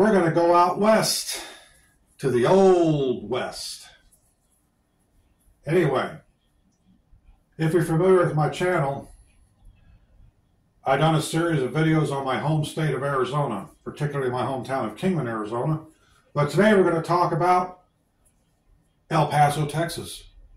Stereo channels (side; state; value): both; identical; correlation 1.00